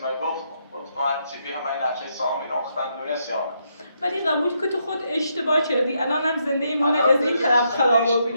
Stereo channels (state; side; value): inverted; both; correlation -0.78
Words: من گفتم تو هر چی بی همه این نقشه سامی نختن دونست یانه ولی قبول که تو خود اشتباه کردی الانم زنده ایمان از این طرف خراب